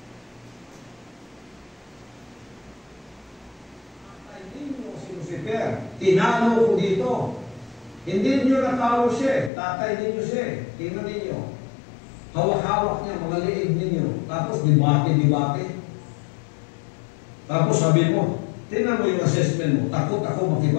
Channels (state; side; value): drops out; right; at 9.5 s